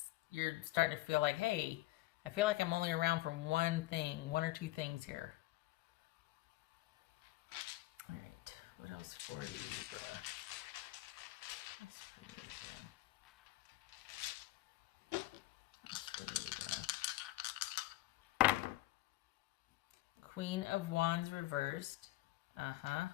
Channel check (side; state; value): right; quieter; 18.7 dB